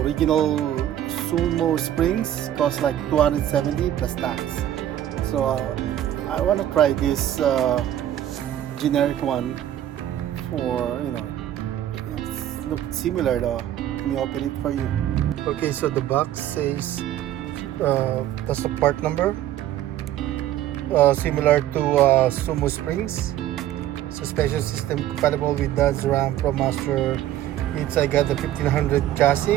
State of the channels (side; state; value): left; quieter; 12.1 dB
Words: Sumosprings cost like 270 plus tax. So I want to try this generic one for, it looks similar though. Let me open it for you. Okay, so the box says that's the part number, similar to Sumosprings. Suspension system compatible with Dodge Ram ProMaster. I got the 1500